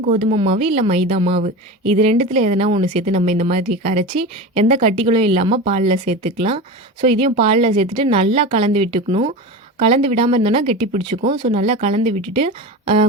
கோதுமை மாவு இல்லை மைதா மாவு, இது ரெண்டுத்தில் எதனா ஒன்று சேர்த்து நம்ம இந்த மாதிரி கரைச்சி எந்த கட்டிகளும் இல்லாமல் பாலில் சேர்த்துக்கலாம். ஸோ இதையும் பாலில் சேர்த்துட்டு நல்லா கலந்து விட்டுக்கணும். கலந்து விடாமல் இருந்தோன்னா கெட்டி பிடிச்சிக்கும். ஸோ நல்லா கலந்து விட்டுட்டு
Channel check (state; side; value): normal; both; correlation 0.27